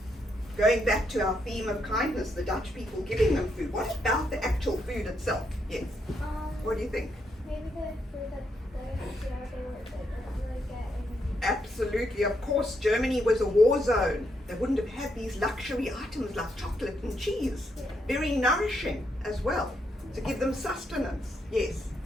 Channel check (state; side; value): normal; both; correlation 0.78